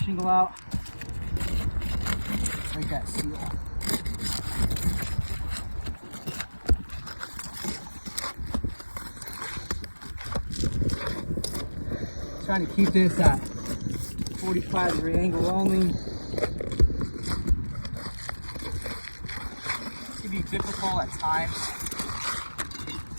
shingle out. Break that seal. Trying to keep this at 45-degree angle only. It can be difficult at times.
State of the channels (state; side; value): inverted; both; correlation -1.00